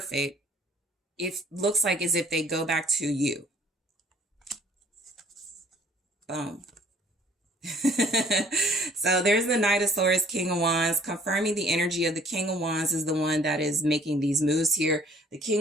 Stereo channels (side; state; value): both; normal; correlation 0.57